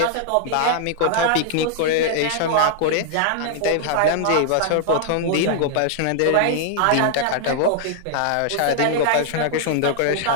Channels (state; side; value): different; both; correlation 0.00